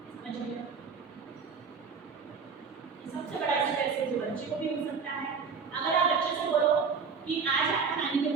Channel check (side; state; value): left; quieter; 5.6 dB